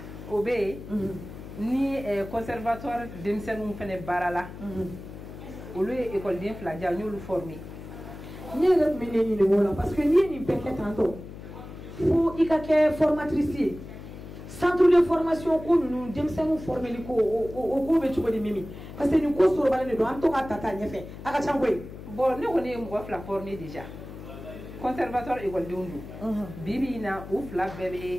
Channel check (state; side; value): noise; left; hum, 13 dB below the sound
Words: Obé, ni conservatoire d'Emsenou fene barala. Au lieu école d'infladia, nous le former. Ni le mener ni le parce que ni peut-être tantôt. Faut y avoir formatrice. Centre de formation ko nous demsenu former ko o be chugo de Mimi parce que nous ko so balane do an to ka tata nyefe aka changoy bon ne woni mo fla former déjà conservatoire école de Undu bibi na ou fla